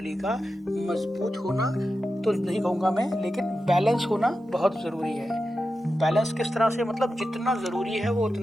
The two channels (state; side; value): normal; both; correlation 0.91